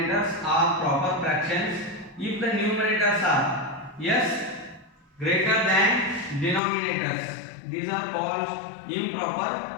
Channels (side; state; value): right; drops out; at 6.6 s